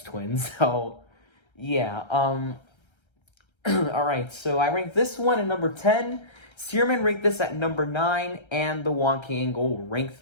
Twin. So, yeah. Alright, so I ranked this one at number 10. Searman ranked this at number 9. And the Wonky Angle ranked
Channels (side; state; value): right; late; 1.3 ms